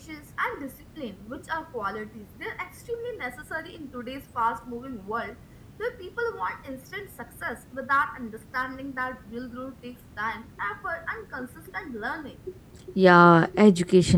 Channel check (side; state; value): both; identical; correlation 1.00